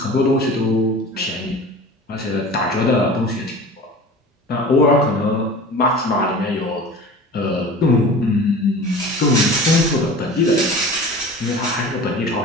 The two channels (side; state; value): both; normal; correlation 0.38